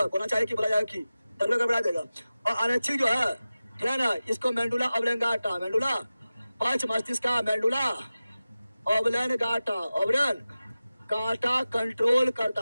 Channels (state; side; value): inverted; both; correlation -0.95